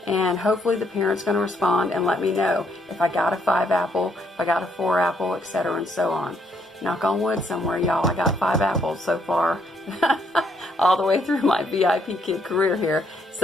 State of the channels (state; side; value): normal; both; correlation 0.71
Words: And hopefully the parent's going to respond and let me know if I got a 5 apple, if I got a 4 apple, etc. and so on. knock on wood somewhere, y'all, I got 5 apples so far. All the way through my VIPKID career here.